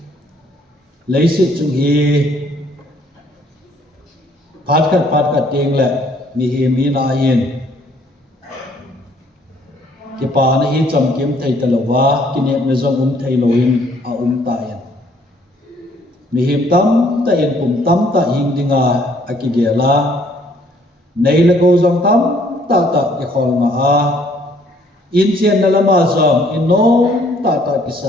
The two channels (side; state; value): both; normal; correlation 0.63